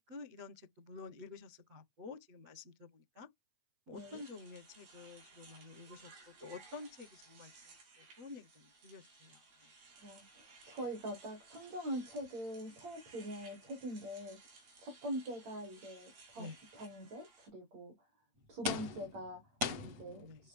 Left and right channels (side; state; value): left; late; 8.7 ms